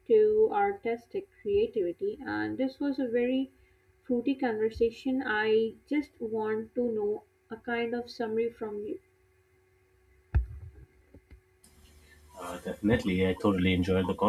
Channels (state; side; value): identical; both; correlation 1.00